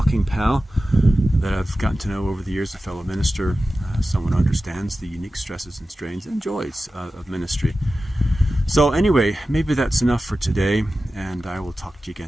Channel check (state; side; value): normal; both; correlation 0.94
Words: pal that I've gotten to know over the years, a fellow minister, someone who understands the unique stresses and strains and joys of ministry. So anyway, maybe that's enough for today, and I will talk to you